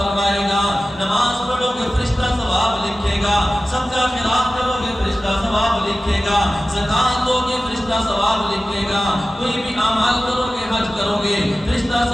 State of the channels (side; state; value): both; normal; correlation 0.96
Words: گا؟ نماز پڑھو گے فرشتہ ثواب لکھے گا، صدقہ خیرات کرو گے فرشتہ ثواب لکھے گا، زکات دو گے فرشتہ ثواب لکھے گا، کوئی بھی اعمال کرو گے، حج کرو گے فرشتہ